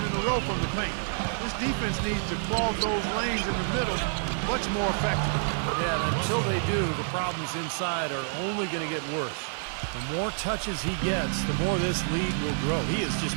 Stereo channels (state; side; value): silent; left; 59 dB below the other